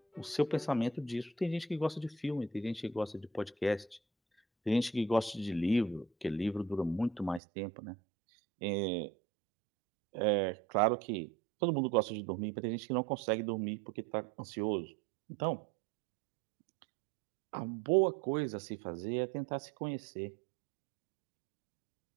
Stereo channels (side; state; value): left; drops out; at 7.4 s